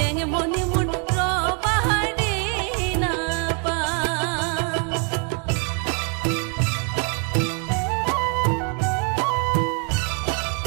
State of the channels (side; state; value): left; quieter; 37.2 dB